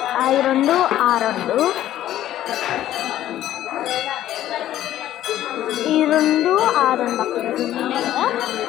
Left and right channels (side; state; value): right; quieter; 12.8 dB